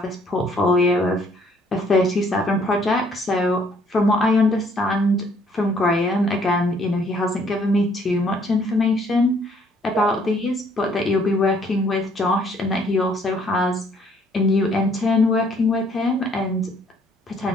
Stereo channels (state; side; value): normal; both; correlation 0.63